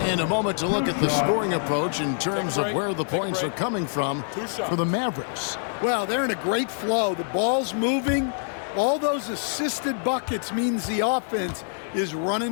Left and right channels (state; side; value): silent; right; 61 dB below the other